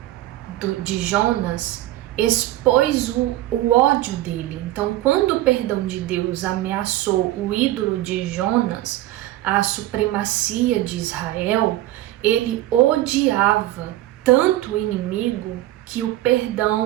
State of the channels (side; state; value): left; quieter; 15.5 dB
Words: de Jonas expôs o ódio dele. Então, quando o perdão de Deus ameaçou o ídolo de Jonas, a supremacia de Israel, ele odiava tanto o inimigo que o